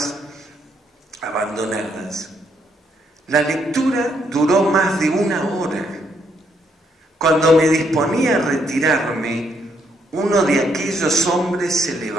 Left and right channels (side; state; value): both; normal; correlation 0.73